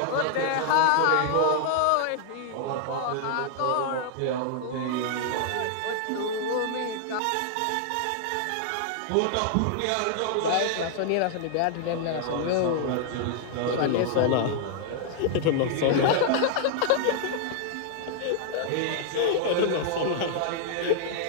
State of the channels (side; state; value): both; different; correlation -0.01